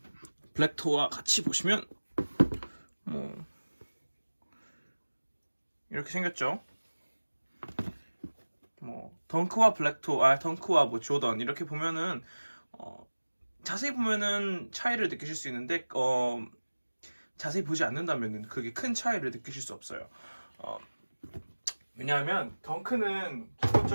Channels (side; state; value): both; inverted; correlation -1.00